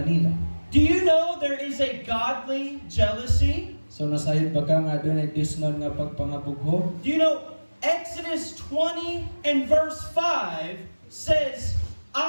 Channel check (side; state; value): both; inverted; correlation -1.00